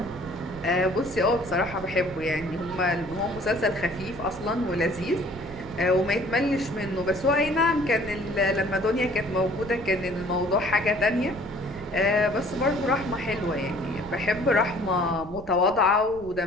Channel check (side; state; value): right; noise; rumble, 16 dB below the sound